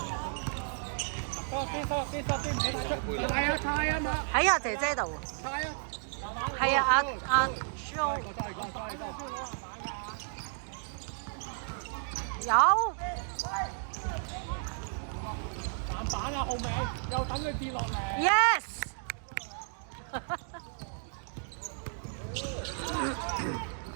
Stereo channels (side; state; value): left; silent; digital silence